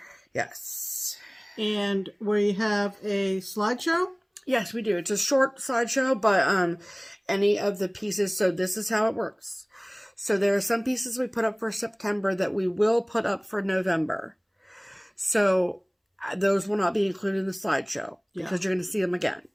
Yes. And we have a slideshow. Yes, we do. It's a short slideshow, but any of the pieces, so this is how it works. So there are some pieces we put up for September that we will put up for November. So those will not be included in the slideshow because you're going to see them again.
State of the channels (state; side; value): identical; both; correlation 1.00